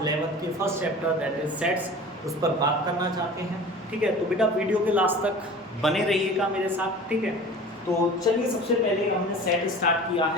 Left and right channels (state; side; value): normal; both; correlation 0.40